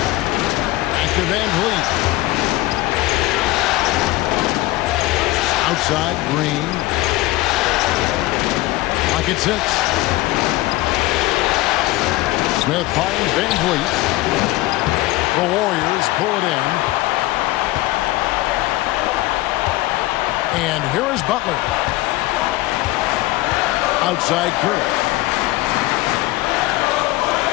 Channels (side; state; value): right; quieter; 18.5 dB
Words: Back to Van Vliet. Outside, Green. Pocket six. Smith finds Van Vliet. The Warriors pull it in. And here is Butler. Outside Curry.